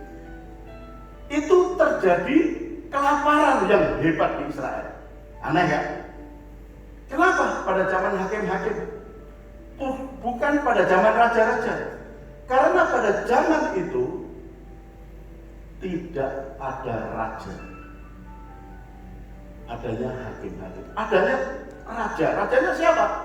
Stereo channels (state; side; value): identical; both; correlation 1.00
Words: itu terjadi kelaparan yang hebat di Israel. Aneh ya? Kenapa pada zaman hakim-hakim? Bukan pada zaman raja-raja. Karena pada zaman itu tidak ada raja. Adanya hakim-hakim. Adanya raja. Rajanya siapa?